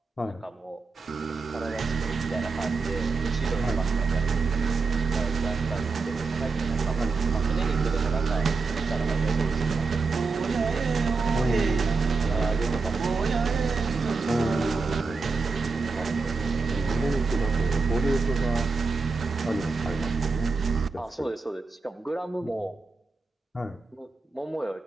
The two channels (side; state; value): left; quieter; 4.3 dB